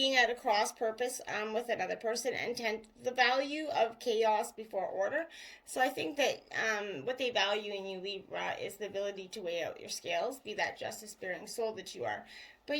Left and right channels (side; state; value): both; identical; correlation 1.00